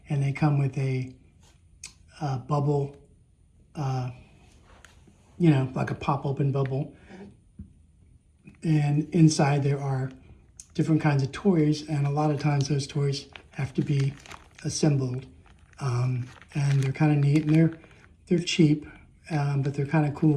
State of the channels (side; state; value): both; identical; correlation 1.00